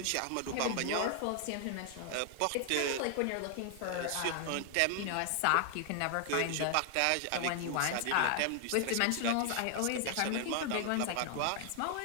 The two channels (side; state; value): both; different; correlation 0.00